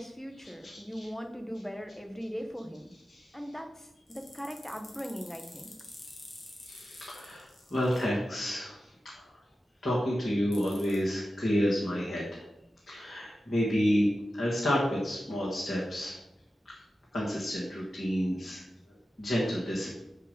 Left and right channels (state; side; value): normal; both; correlation 0.93